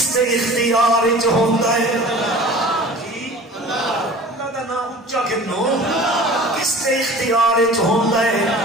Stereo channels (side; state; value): both; normal; correlation 0.42